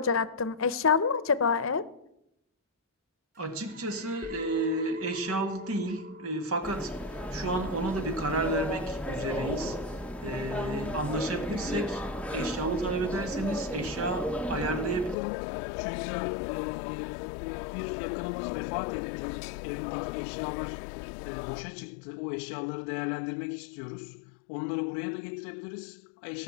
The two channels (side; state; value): right; drops out; at 15.2 s